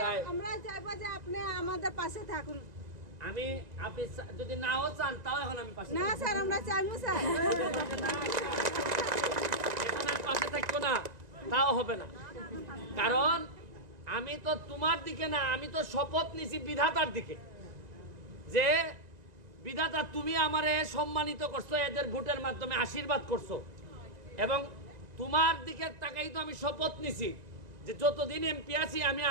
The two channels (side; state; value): left; late; 1.9 ms